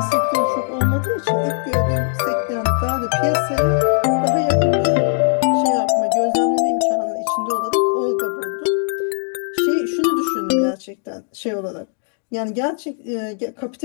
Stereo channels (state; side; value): silent; right; 66 dB below the other